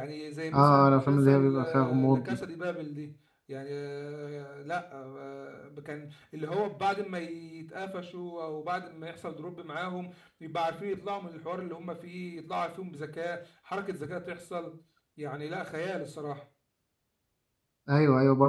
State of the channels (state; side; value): identical; both; correlation 1.00